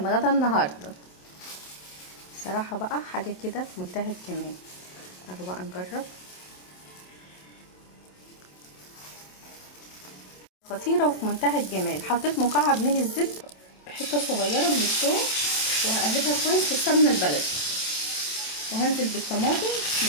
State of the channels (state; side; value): late; right; 27 ms